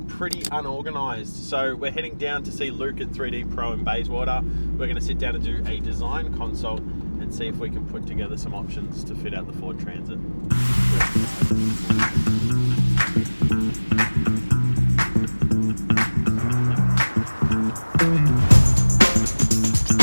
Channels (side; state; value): both; inverted; correlation -1.00